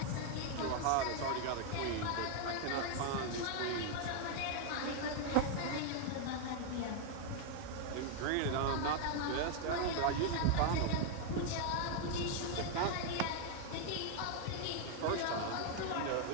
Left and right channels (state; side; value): different; both; correlation 0.00